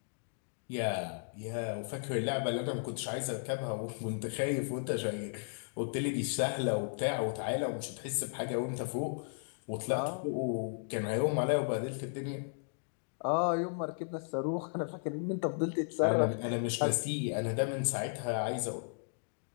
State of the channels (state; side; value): silent; right; digital silence